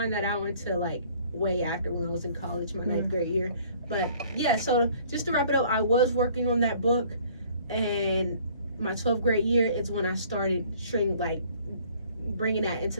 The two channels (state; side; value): inverted; both; correlation -0.56